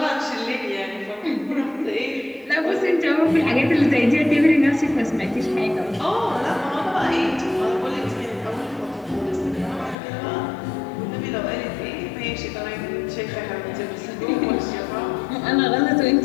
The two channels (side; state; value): right; drops out; at 10.0 s